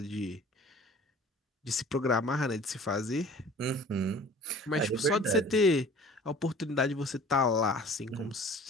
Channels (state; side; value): normal; both; correlation 0.47